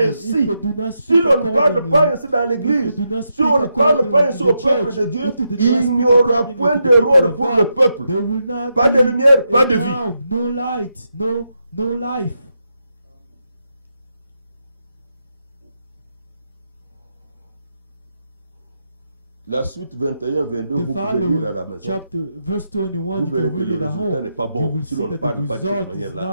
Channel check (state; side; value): inverted; both; correlation -0.83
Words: if they do not si speak l'on ne parle accordingly, pas ainsi dans if l'église, they do not si speak on ne parle accordingly pas in ainsi the au peuple church, de Dieu, if they do not il speak n'y aura accordingly point to the de people rôle of pour God, le peuple. there will not Pas de be lumière, pas a de vie. sound, no light, no life. La suite 21-22, The vous pouvez following lire à la maison. chapter, verse 21, Vous you verrez can que read le it at résultat home. n'est pas You bon will si see l'on ne that the parle pas de cette result is manière-là.